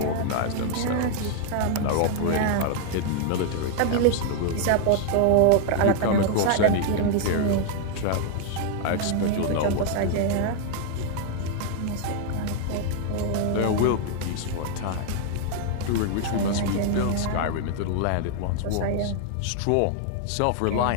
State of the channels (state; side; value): different; both; correlation 0.00